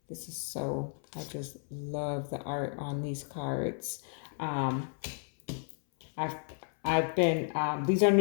This is so, I just love the art on these cards. I've been, these are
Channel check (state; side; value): silent; right; 56 dB below the other